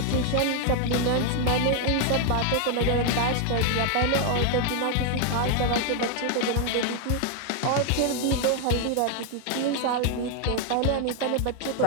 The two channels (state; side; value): different; both; correlation 0.01